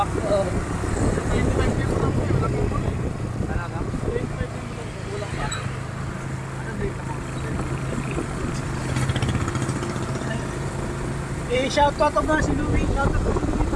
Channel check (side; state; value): both; identical; correlation 1.00